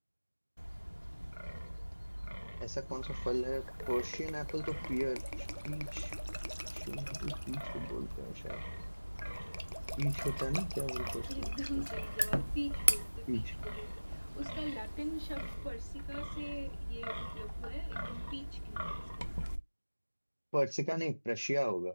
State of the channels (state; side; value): inverted; both; correlation -1.00